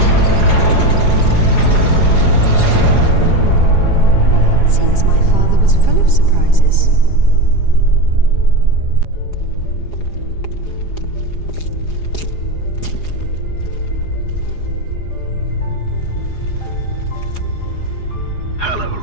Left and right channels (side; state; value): right; late; 4.8 ms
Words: Well, it seems my father was full of surprises. Hello,